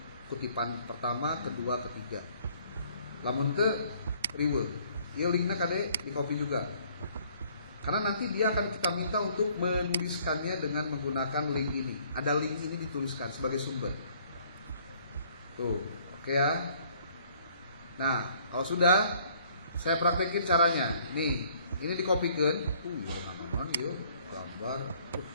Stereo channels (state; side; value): inverted; both; correlation -0.61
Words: kutipan pertama, kedua, ketiga. Lamun teu riweuh. Ieu linkna kade di copy juga. Karena nanti dia akan kita minta untuk menuliskannya dengan menggunakan link ini. Ada link ini dituliskan sebagai sumber. Tuh, oke ya. Nah, kalau sudah saya praktekin caranya. Nih, ini dikopikeun. Ya naon ieu gambar.